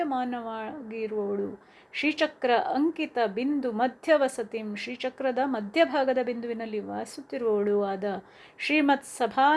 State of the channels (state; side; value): identical; both; correlation 1.00